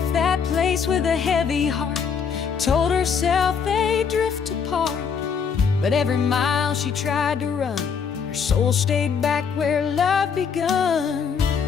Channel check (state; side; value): quieter; right; 6.5 dB